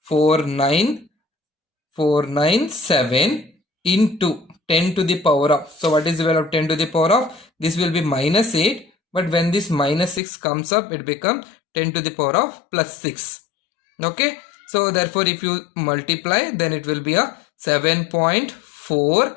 into 10 to the power of, so what is the value of 10 to the power of? This will be minus 8, but when this minus 6 comes up, it becomes 10 to the power of plus 6. Okay, so therefore if you multiply, then it will be a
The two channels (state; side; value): drops out; right; at 10.2 s